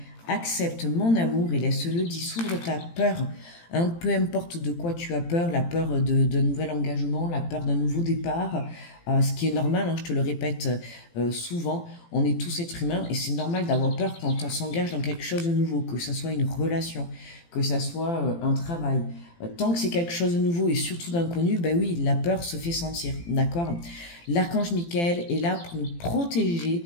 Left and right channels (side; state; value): right; late; 18 ms